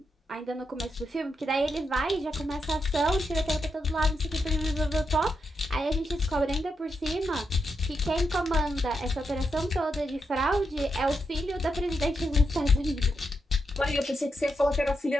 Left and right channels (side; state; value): both; normal; correlation 0.84